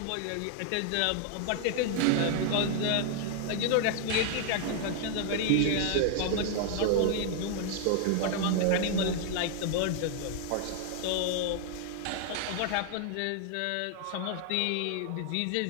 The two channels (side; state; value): both; different; correlation 0.00